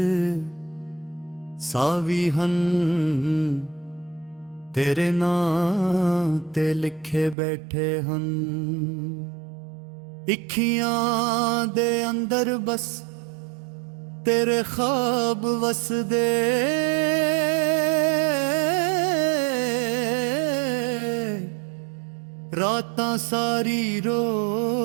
ਸਾਵੀ ਹਨ ਤੇਰੇ ਨਾਂ ਤੇ ਲਿਖੇ ਬੈਠੇ ਹਨ ਅੱਖੀਆਂ ਦੇ ਅੰਦਰ ਬਸ ਤੇਰੇ ਖਾਬ ਵਸਦੇ ਰਾਤਾਂ ਸਾਰੀ ਰੋ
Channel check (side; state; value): left; drops out; at 7.4 s